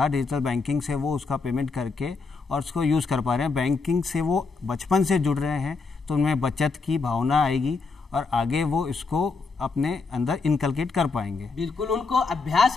डिजिटल बैंकिंग से वो उसका पेमेंट करके और उसको यूज़ कर पा रहे हैं। बैंकिंग से वो बचपन से जुड़ रहे हैं, तो उनमें बचत की भावना आएगी और आगे वो इसको अपने अंदर इनकलकेट कर पाएंगे। बिल्कुल, उनको अभ्यास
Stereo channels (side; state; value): right; quieter; 4.3 dB